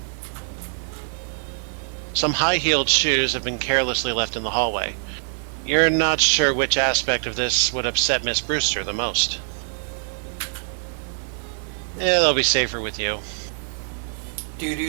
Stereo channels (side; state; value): left; silent; digital silence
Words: Some high-heeled shoes have been carelessly left in the hallway. You're not sure which aspect of this would upset Miss Brewster the most. Yeah, they'll be safer with you. Do.